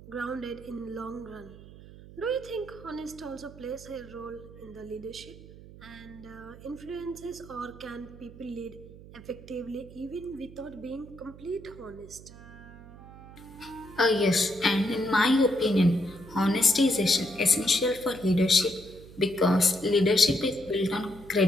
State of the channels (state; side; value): noise; right; hum, 18 dB below the sound